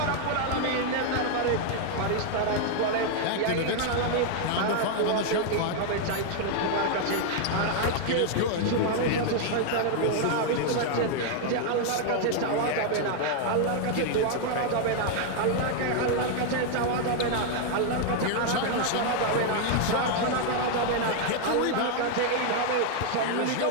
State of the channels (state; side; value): different; both; correlation 0.00